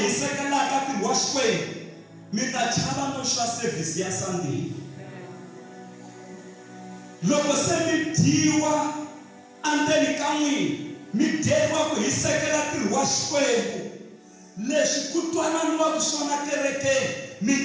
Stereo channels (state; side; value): identical; both; correlation 1.00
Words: hisekelaka ntirho wa Xikwembu, mi ta chava no swa service ya Sunday. Loko se mi dyiwa endzeni ka n'wina, mi dyeriwa ku hisekela ntirho wa Xikwembu, leswi ku twananiwaka swona kerekeni, mi